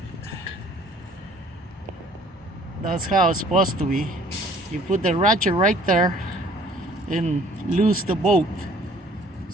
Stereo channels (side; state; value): both; normal; correlation 0.55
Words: That's how it's supposed to be. You put the ratchet right there and loose the bolt.